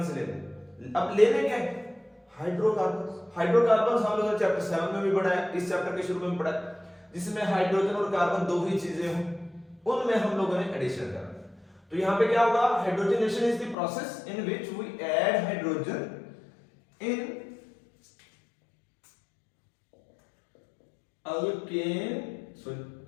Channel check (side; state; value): right; drops out; at 13.8 s